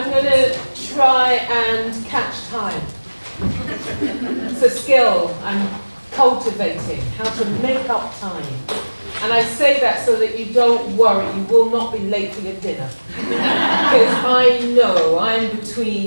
going to try and catch time. It's a skill I'm cultivating, how to make up time. And I say that so that you don't worry, you will not be late for your dinner. Because I know I'm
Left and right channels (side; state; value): both; inverted; correlation -1.00